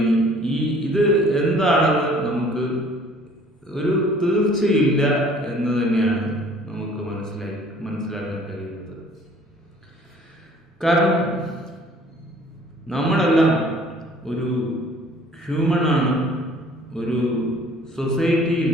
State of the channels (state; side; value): normal; both; correlation 0.54